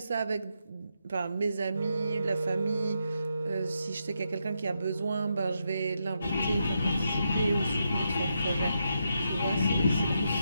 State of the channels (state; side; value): inverted; both; correlation -0.82